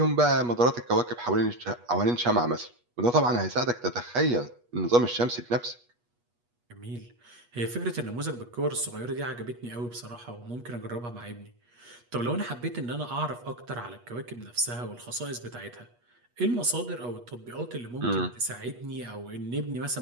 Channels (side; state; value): left; late; 8.3 ms